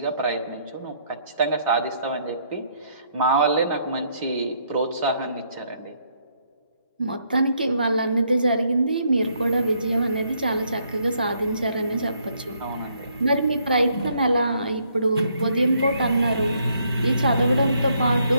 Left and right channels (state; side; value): inverted; both; correlation -0.71